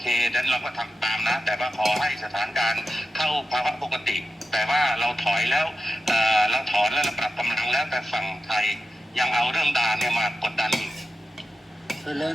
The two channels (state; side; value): normal; both; correlation 0.92